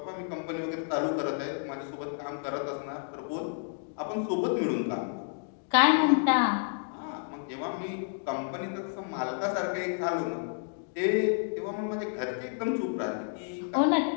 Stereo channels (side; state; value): right; silent; digital silence